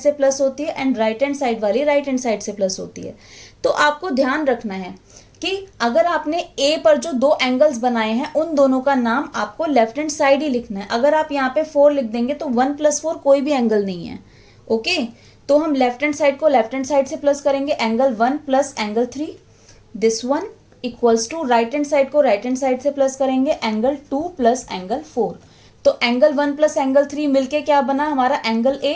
प्लस होती है एंड राइट हैंड साइड वाली राइट हैंड साइड से प्लस होती है। तो आपको ध्यान रखना है कि अगर आपने ए पर जो दो एंगल्स बनाए हैं उन दोनों का नाम आपको लेफ्ट हैंड साइड ही लिखना है। अगर आप यहाँ पे 4 लिख देंगे तो 1 + 4 कोई भी एंगल नहीं है। ओके, तो हम लेफ्ट हैंड साइड को लेफ्ट हैंड साइड से प्लस करेंगे, angle 1 + angle 3, this one equals to right hand side को राइट हैंड साइड से प्लस करेंगे, एंगल 2 + एंगल 4। तो एंगल 1 + एंगल 3 मिलके क्या बना हमारा एंगल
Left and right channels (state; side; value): identical; both; correlation 1.00